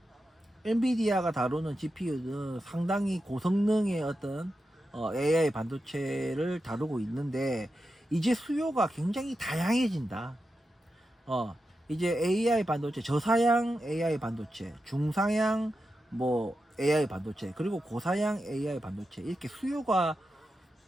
엔비디아가 다루는 GPU는 상당히 고성능의 어떤 AI 반도체를 다루고 있는데 이제 수요가 굉장히 다양해진다. 이제 AI 반도체, 저사양 AI 반도체, 중사양 뭐 AI 반도체, 그리고 고사양 AI 반도체 이렇게 수요가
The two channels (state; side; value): normal; both; correlation 0.89